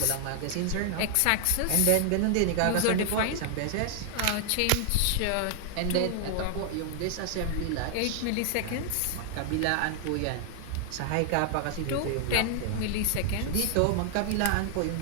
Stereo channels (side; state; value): both; different; correlation 0.00